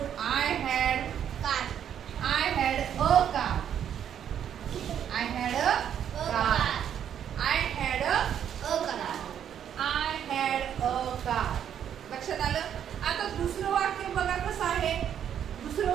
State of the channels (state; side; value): quieter; left; 9.3 dB